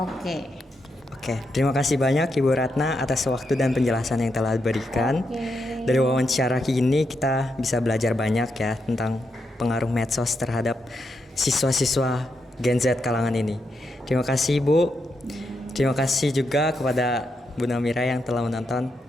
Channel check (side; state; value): both; normal; correlation 0.83